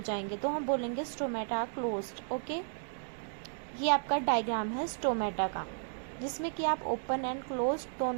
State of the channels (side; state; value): left; silent; digital silence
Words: जाएंगे, तो हम बोलेंगे स्टोमेटा क्लोज्ड। ओके, ये आपका डायग्राम है स्टोमेटा का, जिसमें कि आप ओपन एंड क्लोज